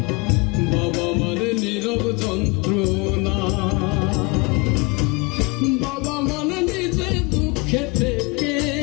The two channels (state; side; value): quieter; right; 28.7 dB